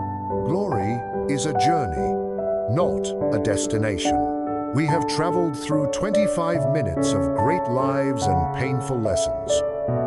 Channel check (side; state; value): both; identical; correlation 1.00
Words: Glory is a journey, not a destination. We have traveled through 25 minutes of great lives and painful lessons.